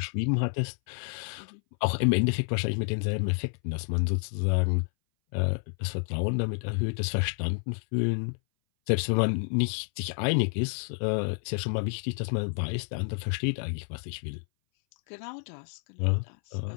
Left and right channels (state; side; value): silent; right; 58 dB below the other